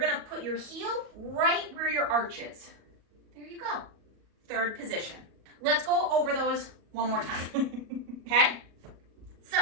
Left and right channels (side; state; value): left; late; 38 ms